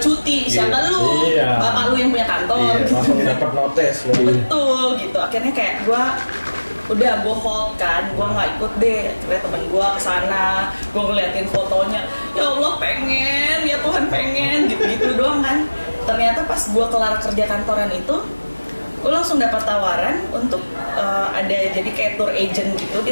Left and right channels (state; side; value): inverted; both; correlation -1.00